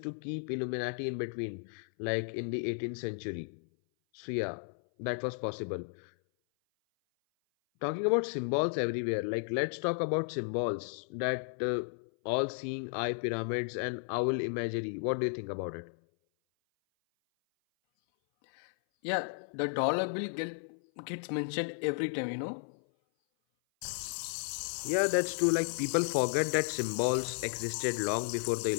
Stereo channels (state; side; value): silent; right; 55 dB below the other